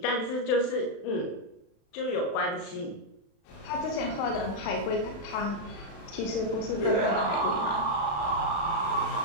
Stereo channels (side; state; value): right; late; 35 ms